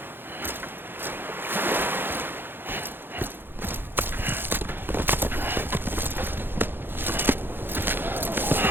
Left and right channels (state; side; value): late; left; 0.10 ms